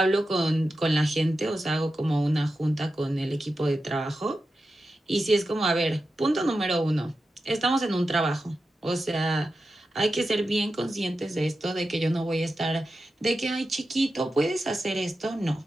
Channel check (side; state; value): both; normal; correlation 0.91